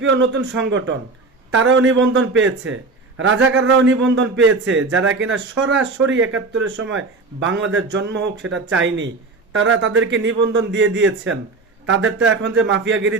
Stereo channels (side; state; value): left; quieter; 3.8 dB